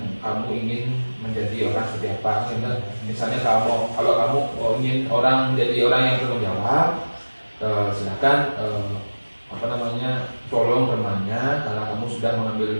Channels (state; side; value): inverted; both; correlation -1.00